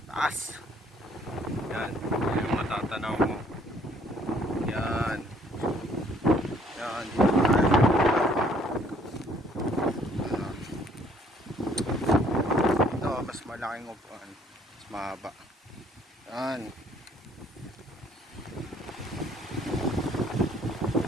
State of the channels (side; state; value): both; normal; correlation 0.62